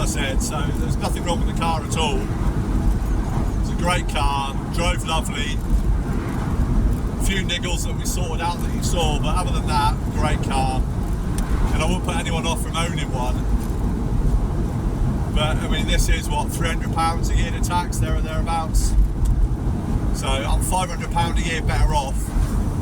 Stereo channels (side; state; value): both; identical; correlation 1.00